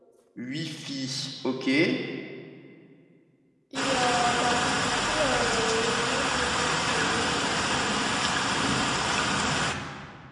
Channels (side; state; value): both; identical; correlation 1.00